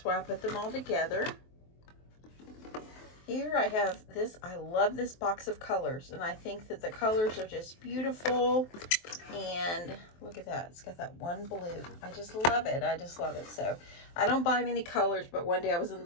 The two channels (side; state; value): right; late; 23 ms